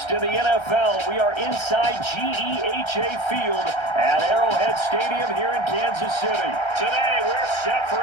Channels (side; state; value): right; late; 1.3 ms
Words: in the NFL, we are inside GEHA Field at Arrowhead Stadium here in Kansas City. Today, we're set for